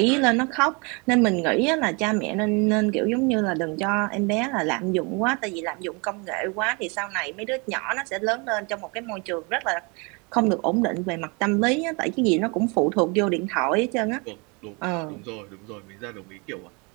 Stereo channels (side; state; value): left; quieter; 30.5 dB